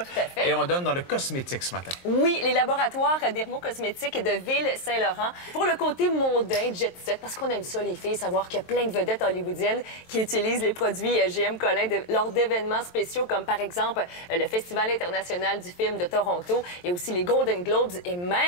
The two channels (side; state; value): right; late; 23 ms